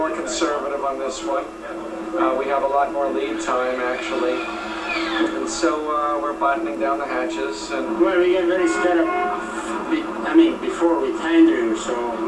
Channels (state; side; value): identical; both; correlation 1.00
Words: conservative on this one. We have a lot more lead time, actually. And so we're buttoning down the hatches. And well, we get very set up, before we tender, so